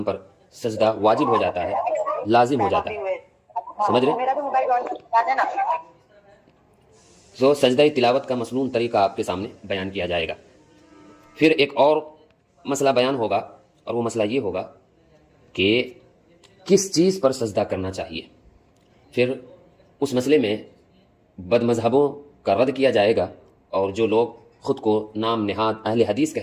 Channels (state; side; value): identical; both; correlation 1.00